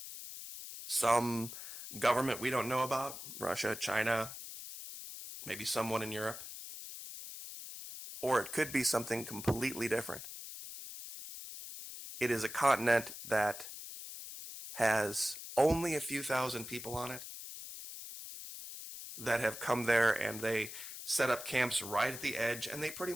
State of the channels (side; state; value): left; noise; hiss, 10 dB below the sound